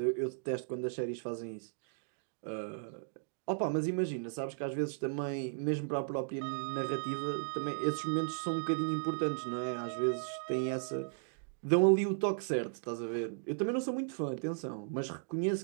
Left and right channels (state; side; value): silent; left; digital silence